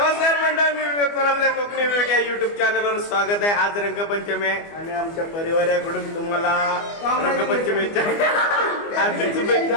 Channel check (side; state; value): right; late; 24 ms